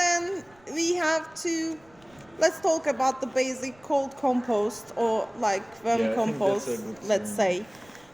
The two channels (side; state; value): right; noise; rumble, 29 dB below the sound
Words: we have to. Let's talk about the basic cold compost or like worm Yeah, I think compost. that's a good Let's say.